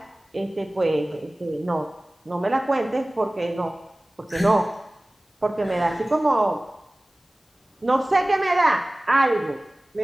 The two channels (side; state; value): both; normal; correlation 0.98